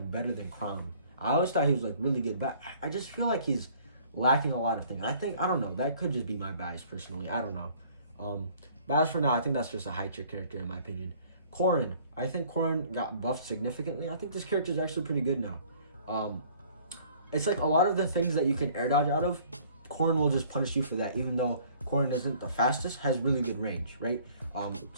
better than Chrom. I always thought he was like really good, but I just feel like he's lacking a lot of things. I don't know. That could just be my bias personally. I don't know. But as for now, I think that's just a high tier character in my opinion. Corrin. I think Corrin got buffed significantly. I think this character is actually pretty good now. It's like a lot of the things that you can air dodge out of, Corrin will just punish you for that, even though Corrin isn't the fastest, has really good range, right?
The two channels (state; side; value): inverted; both; correlation -0.55